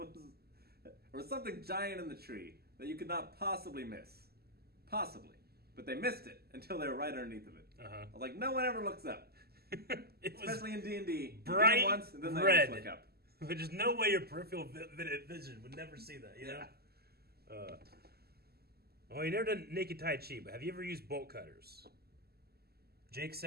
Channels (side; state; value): left; late; 0.46 ms